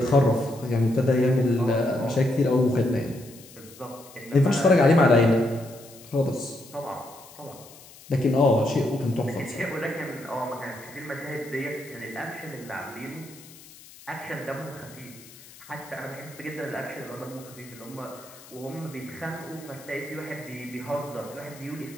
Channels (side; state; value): left; noise; hiss, 20 dB below the sound